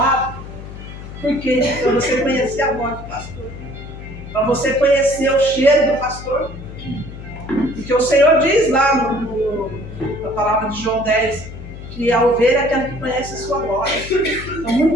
Por quê? Para você conhecer a voz do pastor. Para você conhecer o cheiro do pastor. Porque o Senhor diz lá na palavra de João 10, que a ovelha é aquela que conhece a sua voz. Então,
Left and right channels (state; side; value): noise; left; hum, 12 dB below the sound